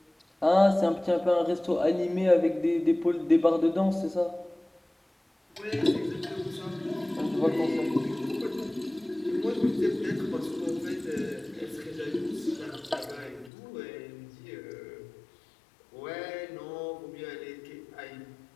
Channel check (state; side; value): drops out; right; at 13.5 s